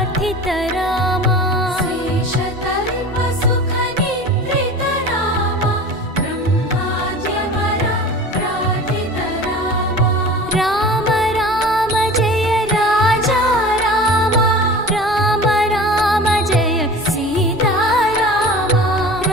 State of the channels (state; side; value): normal; both; correlation 0.37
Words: रामा शेषतल्प सुख निद्रित रामा ब्रह्माद्यमर प्रार्थित रामा राम राम जय राजा रामा राम राम जय सीता रामा